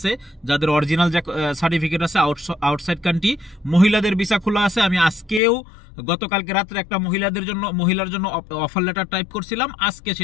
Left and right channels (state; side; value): drops out; right; at 5.4 s